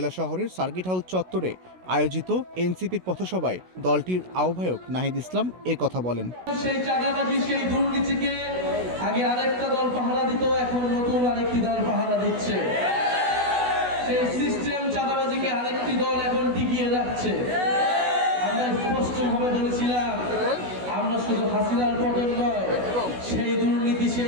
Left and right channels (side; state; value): left; late; 16 ms